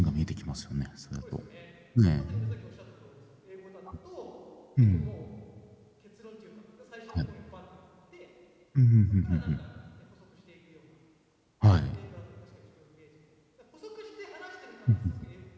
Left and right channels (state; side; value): identical; both; correlation 1.00